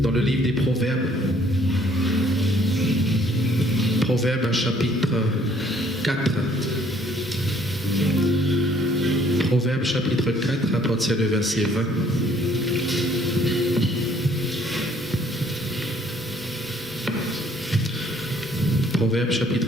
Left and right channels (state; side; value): normal; both; correlation 0.61